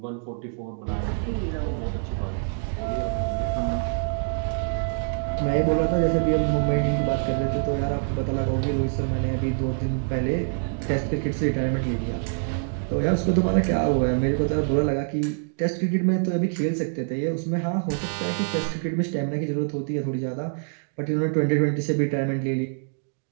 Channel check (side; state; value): left; silent; digital silence